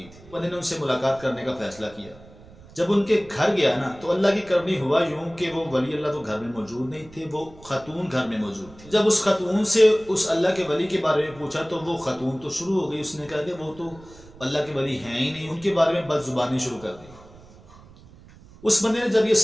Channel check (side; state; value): right; noise; rumble, 22 dB below the sound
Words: تھی. بندے نے ان سے ملاقات کرنے کا فیصلہ کیا. جب ان کے گھر گیا نا تو اللہ کی کرنی ہوا یوں کہ وہ ولی اللہ تو گھر میں موجود نہیں تھے، وہ خاتون گھر میں موجود تھی. جب اس خاتون سے اس اللہ کے ولی کے بارے میں پوچھا تو وہ خاتون تو شروع ہو گئی. اس نے کہا کہ وہ تو اللہ کے ولی ہیں ہی نہیں، ان کے بارے میں بد زبانی شروع کر دی. اس بندے نے جب یہ